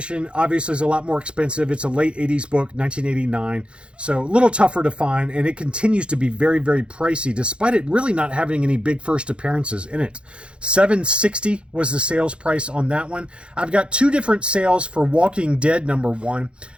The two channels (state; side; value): late; left; 0.057 ms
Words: obviously is a lot more expensive. It's a late 80s book, 1989. So a little tougher to find. And it continues to be very, very pricey, despite it really not having any big first appearances in it. $7.60 was the sales price on that one. I've got two different sales for Walking Dead #1.